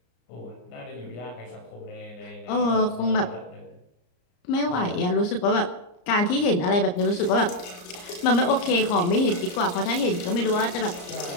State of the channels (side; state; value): right; late; 34 ms